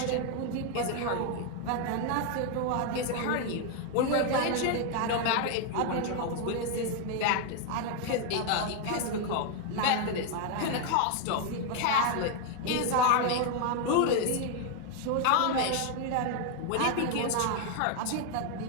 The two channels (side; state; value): both; different; correlation 0.01